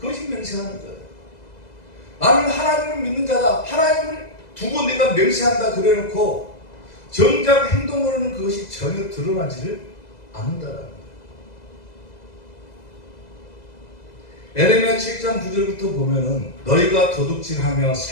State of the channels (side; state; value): right; late; 2.0 ms